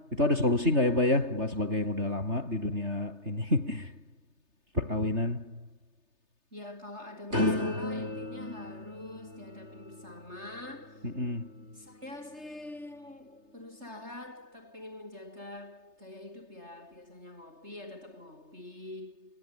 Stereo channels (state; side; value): late; left; 3.3 ms